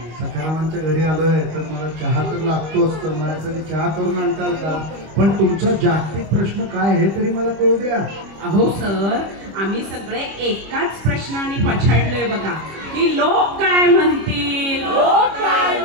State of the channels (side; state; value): left; late; 25 ms